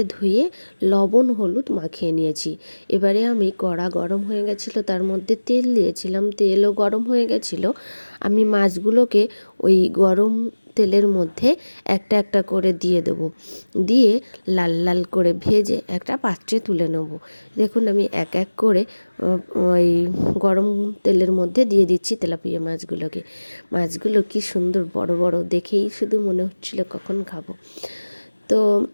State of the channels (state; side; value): inverted; both; correlation -1.00